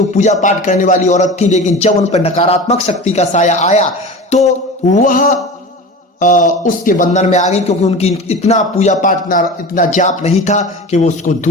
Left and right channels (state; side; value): normal; both; correlation 0.33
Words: पूजा पाठ करने वाली औरत थी, लेकिन जब उन पर नकारात्मक शक्ति का साया आया तो वह उसके बंधन में आ गई, क्योंकि उनकी इतना पूजा पाठ, इतना जाप नहीं था कि वो उसको